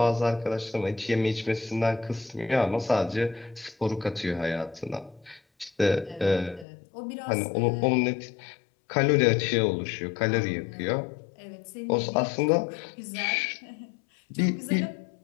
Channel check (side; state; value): right; drops out; at 6.7 s